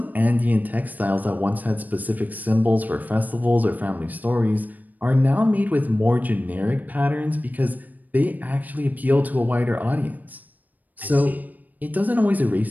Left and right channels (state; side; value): late; left; 0.083 ms